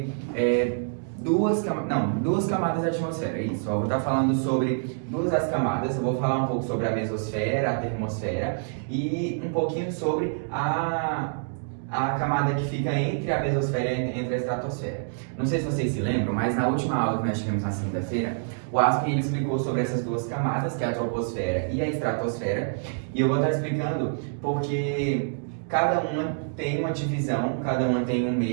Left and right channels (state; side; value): silent; left; digital silence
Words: duas camadas da atmosfera. Isso, eu vou estar falando sobre duas das camadas. Eu vou falar um pouco sobre a mesosfera, a termosfera e um pouquinho sobre a camada que fica entre a mesosfera e entre a estratosfera. Não sei se vocês se lembram, mas na última aula que nós tivemos na segunda-feira, o Aspen ele explicou sobre essas duas camadas, que é a troposfera e a estratosfera, e eu vou estar explicando porque cada uma tem uma divisão, cada uma tem um